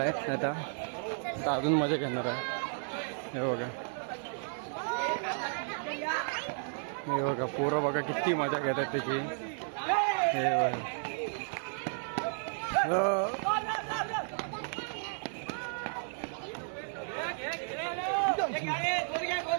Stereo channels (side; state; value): left; silent; 56 dB below the other